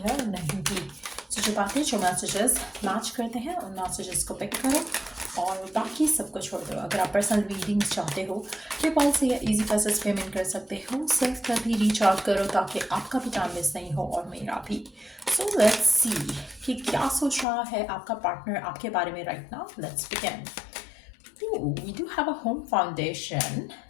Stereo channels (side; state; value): right; drops out; at 17.4 s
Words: है और नहीं भी। सो जो बातें जो मैसेजेस मैच करते हैं उन मैसेजेस को पिक करो और बाकी सबको छोड़ दो। अगर आप पर्सनल रीडिंग्स चाहते हो पेपाल से या इजी पैसेज पेमेंट कर सकते हो। सेल्फ पर भी रीच आउट करो ताकि आपका भी टाइम मिस नहीं हो और मेरा भी। सो लेट्स सी कि क्या सोच रहा है आपका पार्टनर आपके बारे में right now. Let's begin. We do have a home foundation.